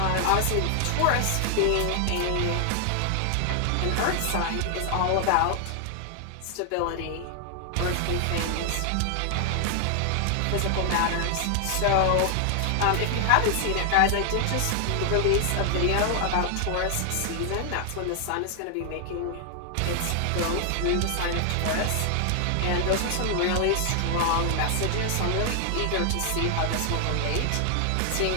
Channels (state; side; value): different; both; correlation 0.00